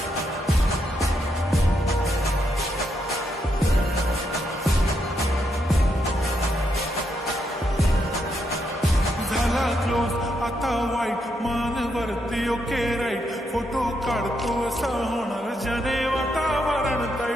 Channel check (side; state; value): both; normal; correlation 0.80